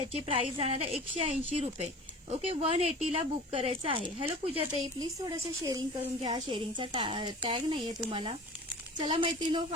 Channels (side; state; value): both; normal; correlation 0.40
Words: प्राइस जाणार आहे 180 रुपये. ओके, 180 ला बुक करायचं आहे. हॅलो पूजाताई, प्लीज थोडंसं शेअरिंग करून घ्या. शेअरिंगचा टॅग नाहीये तुम्हाला. चला मैत्रिणो,